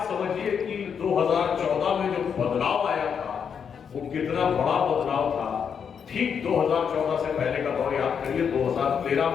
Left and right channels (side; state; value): right; quieter; 7.1 dB